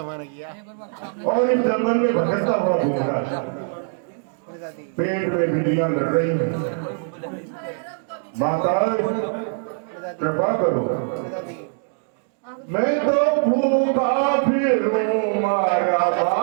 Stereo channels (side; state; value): left; silent; 61 dB below the other